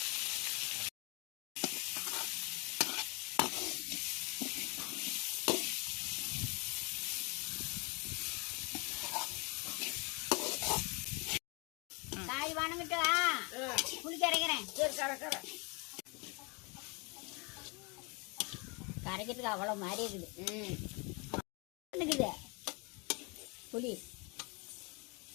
காய் வணங்கிட்டு புளி கரைக்கிறேன். கரைக்கிறதுக்கு அவ்வளோ மாதிரி இருக்குது. புளி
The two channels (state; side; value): quieter; right; 30.8 dB